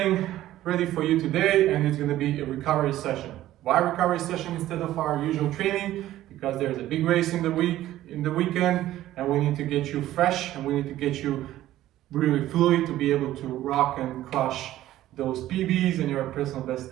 ready for you today and it's going to be a recovery session. Why recovery session instead of our usual training? Because there's a big race in the weekend and we need to get you fresh and we need to get you really fluid to be able to rock and crush those PBs and your personal best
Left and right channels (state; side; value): quieter; left; 14.2 dB